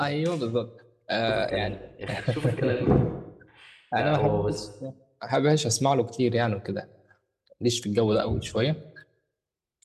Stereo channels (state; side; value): identical; both; correlation 1.00